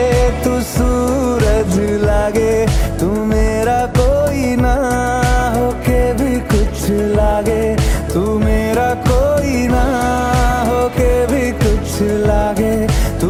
तू सूरज लागे, तू मेरा कोई ना होके भी कुछ लागे, तू मेरा कोई ना होके भी कुछ लागे,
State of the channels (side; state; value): both; identical; correlation 1.00